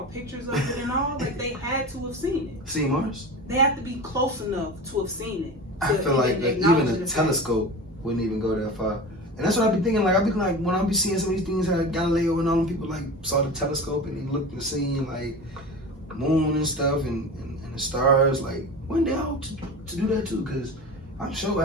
pictures of it and all? Like they had to have seen it. See Mars? They have to be close enough to have seen it. I feel like even a telescope wouldn't even go that far. And that's what I be thinking. Like I be like when I be seeing some of these things, how Galileo and all them people like saw the telescope and they looked and seen like moon and stuff and the stars. Like one day I hope to do that too, because I'm sure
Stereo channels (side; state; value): both; normal; correlation 0.31